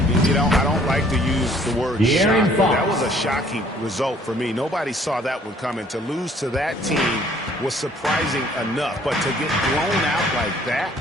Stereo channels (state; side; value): normal; both; correlation 0.59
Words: You know, I don't like to use the word shock, but that was a shocking result for me. Nobody saw that one coming. To lose to that team was surprising enough, but to get blown out like that?